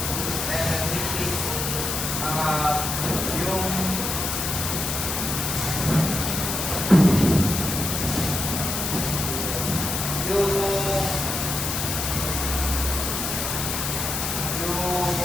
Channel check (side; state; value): left; noise; hiss, 2 dB below the sound